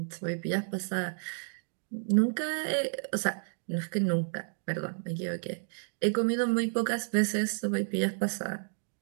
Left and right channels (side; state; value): left; silent; digital silence